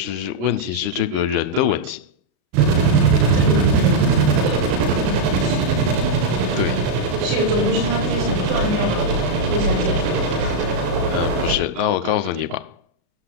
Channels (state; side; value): late; left; 33 ms